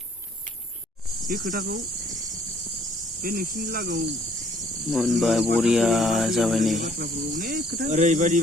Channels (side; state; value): both; normal; correlation 0.60